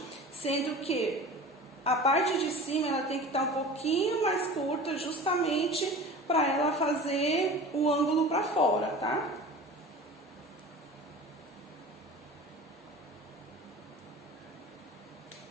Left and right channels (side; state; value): both; normal; correlation 0.37